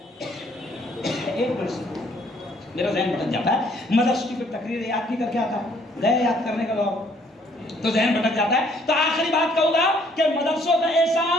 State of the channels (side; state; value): both; normal; correlation 0.63